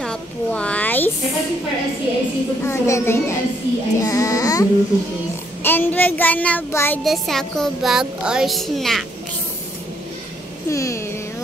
Yeah. And we're gonna buy the sako bag or snacks.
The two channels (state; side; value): normal; both; correlation 0.70